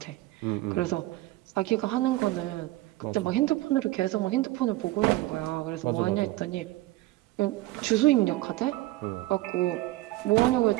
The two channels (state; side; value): quieter; left; 17.7 dB